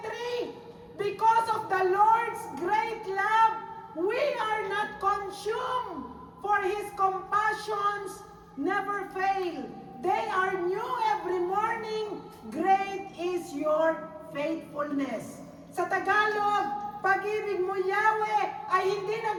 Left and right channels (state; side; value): identical; both; correlation 1.00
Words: because of the Lord's great love, we are not consumed, for His compassions never fail. They are new every morning. Great is your faithfulness. Sa Tagalog, pag-ibig mo, Yahweh, ay hindi